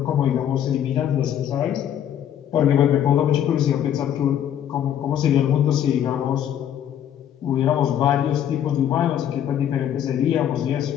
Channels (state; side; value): quieter; right; 10.1 dB